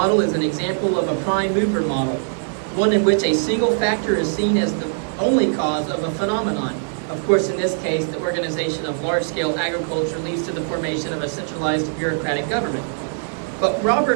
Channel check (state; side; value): silent; left; digital silence